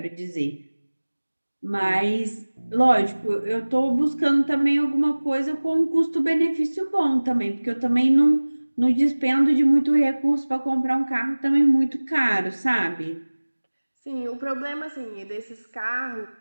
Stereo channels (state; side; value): inverted; both; correlation -1.00